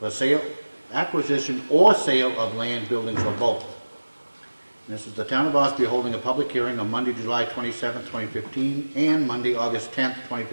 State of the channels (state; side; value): inverted; both; correlation -1.00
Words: acquisition or sale of land, buildings, or both. And this is the town of Ossipee holding a public hearing on Monday, July 27th, 2015, and Monday, August 10th,